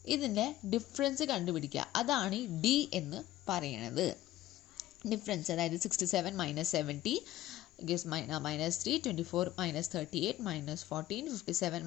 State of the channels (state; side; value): quieter; right; 14.7 dB